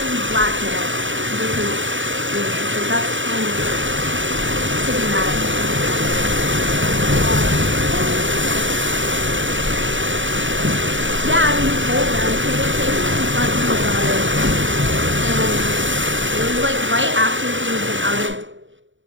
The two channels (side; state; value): left; late; 0.55 ms